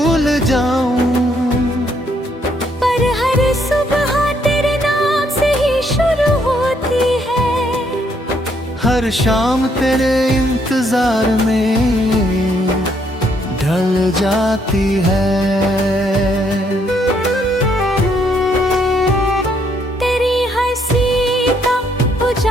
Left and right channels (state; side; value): normal; both; correlation 0.71